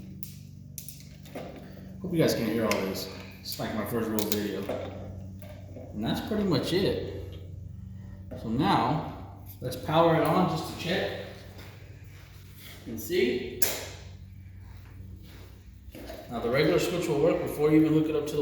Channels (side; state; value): both; identical; correlation 1.00